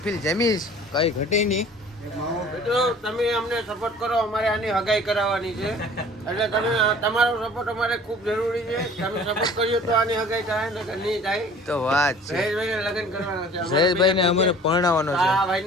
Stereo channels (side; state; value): both; normal; correlation 0.48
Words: જમીશ કઈ ઘટે નહીં. મિત્રો તમે અમને સપોર્ટ કરો, અમારે આની હગાઈ કરાવવાની છે એટલે તમે તમારો સપોર્ટ અમારે ખૂબ જરૂરી છે. તમે સપોર્ટ કર્યો તો આની હગાઈ થાય ને નહીં થાય. તો વાત છે, જયેશભાઈને લગ્ન કરવાના છે. જયેશભાઈને અમારે પરણાવવાનો છે. આ